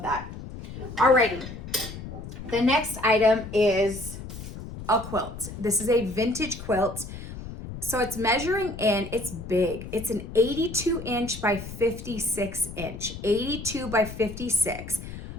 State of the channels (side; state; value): left; noise; rumble, 11 dB below the sound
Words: that. Alrighty. The next item is a quilt. This is a vintage quilt. So it's measuring in, it's big. It's an 82 inch by 56 inch, 82 by 56.